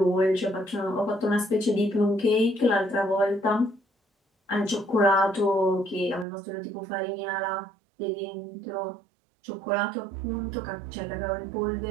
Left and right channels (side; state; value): left; drops out; at 6.2 s